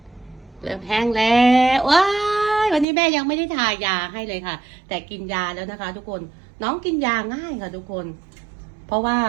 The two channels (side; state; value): left; drops out; at 2.9 s